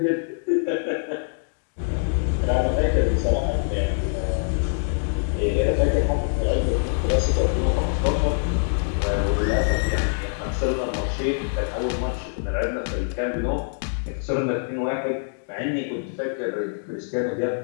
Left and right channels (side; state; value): right; silent; digital silence